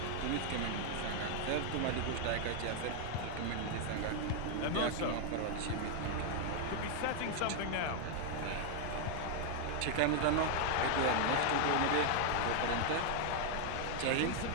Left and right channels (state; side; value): different; both; correlation 0.00